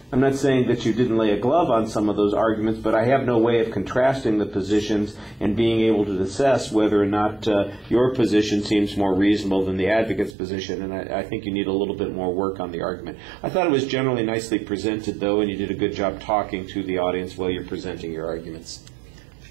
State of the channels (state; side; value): drops out; left; at 10.4 s